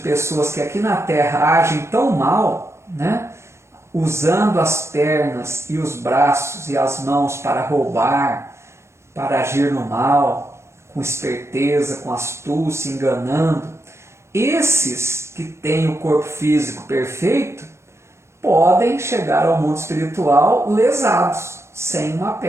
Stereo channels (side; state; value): left; late; 0.13 ms